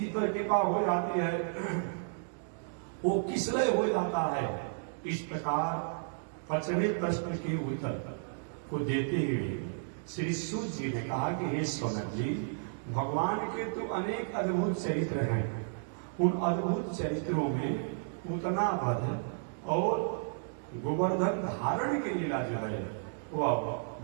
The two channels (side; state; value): left; silent; digital silence